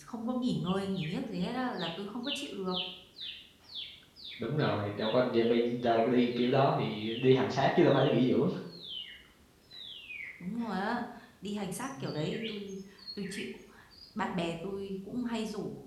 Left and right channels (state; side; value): identical; both; correlation 1.00